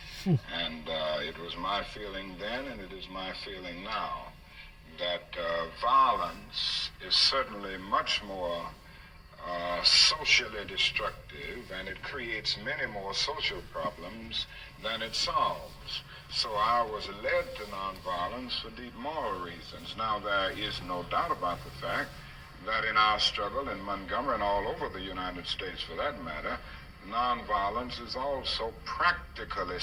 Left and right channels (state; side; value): identical; both; correlation 1.00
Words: And it was my feeling then, and it is my feeling now, that violence is certainly much more socially destructive, and it creates many more social problems than it solves. So I was led to nonviolence for deep moral reasons. Now, there is no doubt about the fact that in our struggle in Montgomery and all over the United States for that matter, nonviolence is also practically